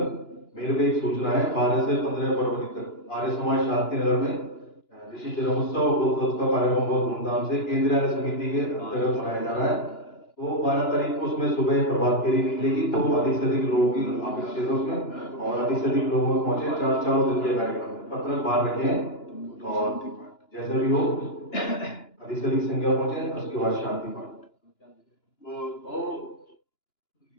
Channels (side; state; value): right; late; 2.9 ms